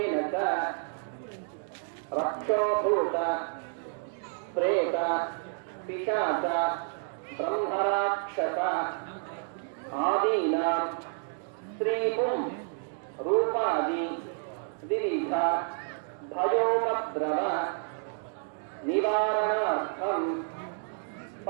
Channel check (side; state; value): left; silent; 58 dB below the other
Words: చ రక్షోభూత ప్రేత పిశాచ బ్రహ్మరాక్షస ఆదీనాం స్త్రీపుం రూపాది వివిధ భయోపద్రవ నివారణార్థం